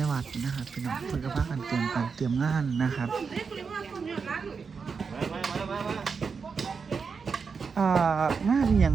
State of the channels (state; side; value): quieter; left; 5.5 dB